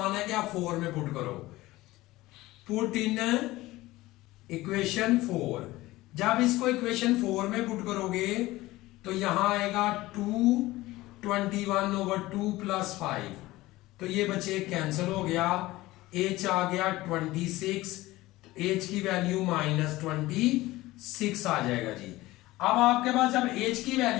है कि आप 4 में पुट करो। Put in equation 4। जब इसको इक्वेशन 4 में पुट करोगे तो यहां आएगा 21/2 +5, तो ये बच्चे कैंसिल हो गया, h आ गया 26, h की वैल्यू -26 आ जाएगा जी। अब आपके पास जब h की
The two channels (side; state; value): right; quieter; 18.3 dB